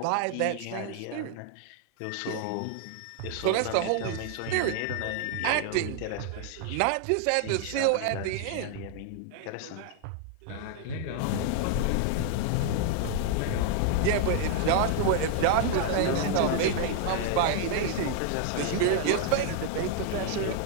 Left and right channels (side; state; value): both; different; correlation 0.00